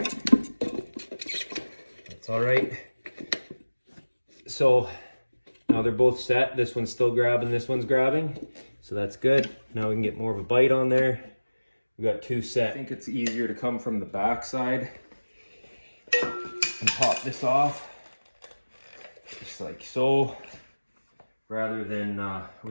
That's all right. So now they're both set. This one's still grabbing, this one's grabbing. So that's good. Now we can get more of a bite on there. We got two set. I think it's easier to come from the back side and pop this off, just like so, rather than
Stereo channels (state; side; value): inverted; both; correlation -1.00